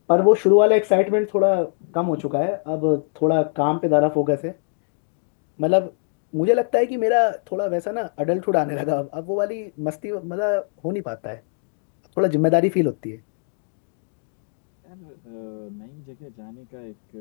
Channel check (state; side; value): silent; right; digital silence